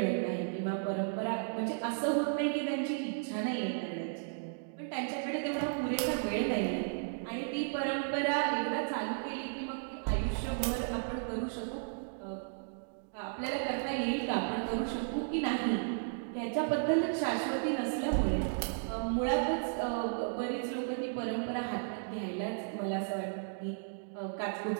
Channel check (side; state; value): left; silent; digital silence